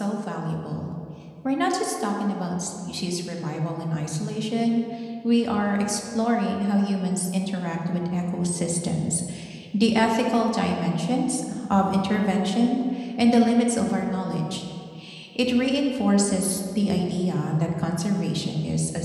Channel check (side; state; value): both; identical; correlation 1.00